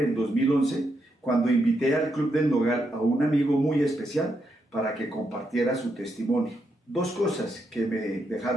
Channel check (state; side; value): normal; both; correlation 0.81